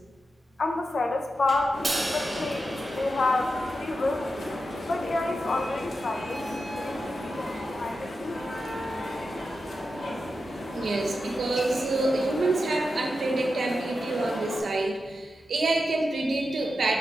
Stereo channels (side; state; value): both; normal; correlation 0.89